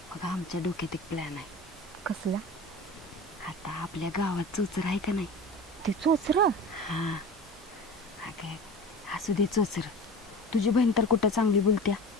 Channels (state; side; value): normal; both; correlation 0.35